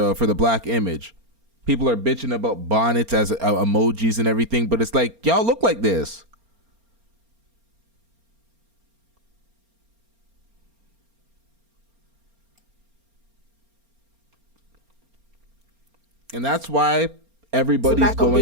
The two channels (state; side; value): late; left; 4.3 ms